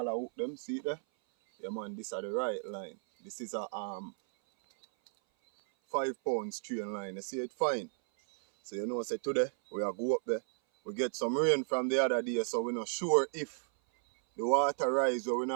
hook them. See it there? Yeah man, this are the right line. This is a 5 pound strain line. You see it fine? So you know, say today we are go up there. We get some rain from the other day, so we're not sure if the water rise or we're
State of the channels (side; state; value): left; silent; 55 dB below the other